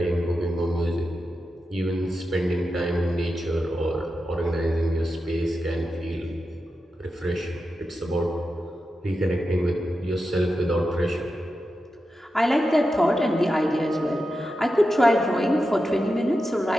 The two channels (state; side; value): normal; both; correlation 0.90